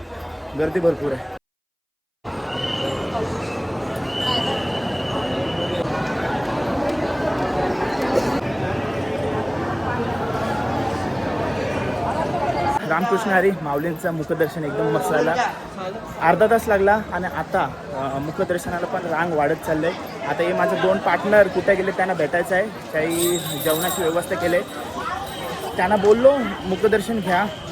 गर्दी भरपूर आहे. रामकृष्ण हरी. माऊलींचं मुखदर्शन एकदम मस्त झाला. अर्धा तास लागला आणि आता मुखदर्शनाला पण रांग वाढत चाललं आहे. आता हे माझे 2 पार्टनर कुठे गेले त्यांना भेटायचं आहे. काही जेवणाची व्यवस्था केली आहे. त्यांना बोललो मुखदर्शन घ्या,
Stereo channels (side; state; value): both; identical; correlation 1.00